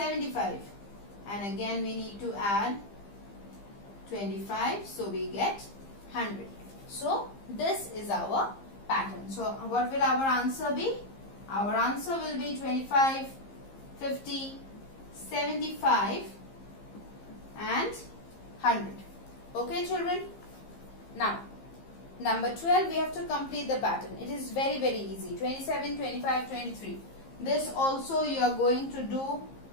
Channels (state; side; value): late; right; 15 ms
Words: And again, we need to add 25. So, we get 100. So, this is our pattern. So, what will our answer be? Our answer will be 25, 50, 75 and 100. Okay, children? Now, number 12, we have to complete the pattern. It is very, very easy. 27, 25, 23. This also you are going to do